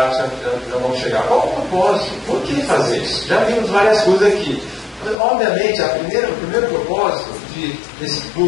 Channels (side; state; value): right; drops out; at 5.2 s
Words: já vamos chegar. Qual o propósito? Por que fazer isso? Já vimos várias coisas aqui. Obviamente, o primeiro propósito desse